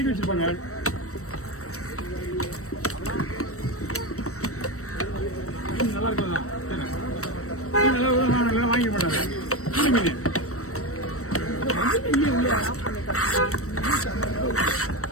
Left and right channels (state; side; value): late; right; 0.64 ms